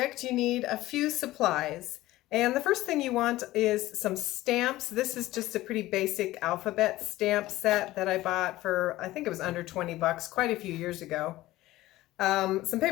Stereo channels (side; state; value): right; quieter; 16.8 dB